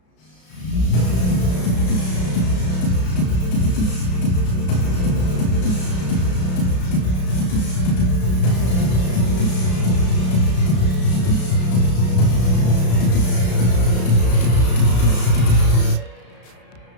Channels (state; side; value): late; right; 33 ms